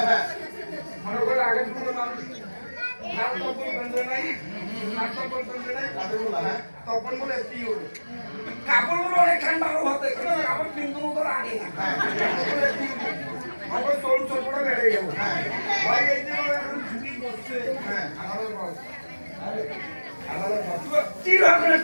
হ্যাঁ মনে করে আগে কোনো মানুষ নাম তপন বন্ধ নাই নাম তপন বন্ধ নাই তপন বলে কি হলো কাপড়গুলো অনেক ঠান্ডা হতে কাপড় কিন্তু তোর আগে না আমার চোল চোপড়া বেড়ে গেল ভাই এই যে এখন ছুটি করছে হ্যাঁ আমাদের বস আমাদের বস কি হবে না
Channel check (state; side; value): inverted; both; correlation -1.00